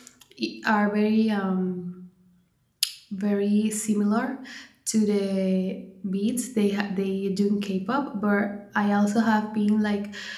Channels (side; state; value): both; identical; correlation 1.00